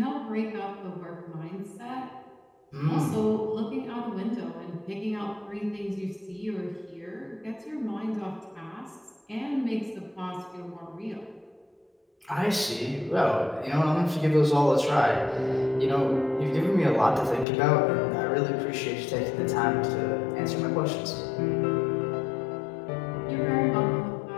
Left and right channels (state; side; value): drops out; right; at 17.4 s